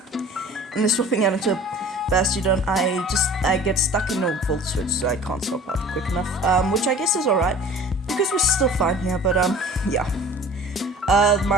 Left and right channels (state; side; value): normal; both; correlation 0.44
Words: And they're swapping out into Bastion. I get stuck in a volt switch, so I can't swap out quick enough, which I guess is alright, because we're still fine here, but yeah.